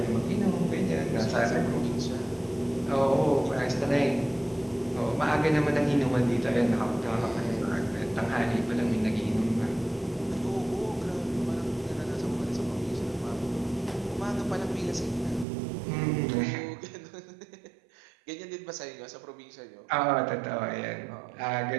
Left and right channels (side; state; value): left; drops out; at 15.5 s